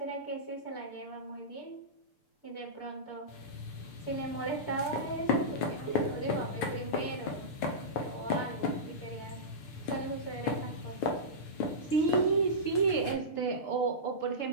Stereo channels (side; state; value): right; late; 6.7 ms